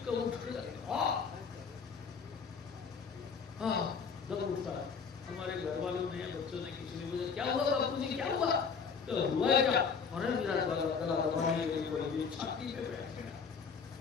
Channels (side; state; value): right; quieter; 5.8 dB